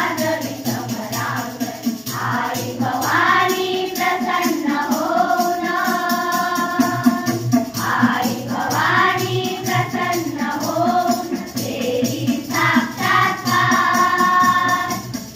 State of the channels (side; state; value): both; identical; correlation 1.00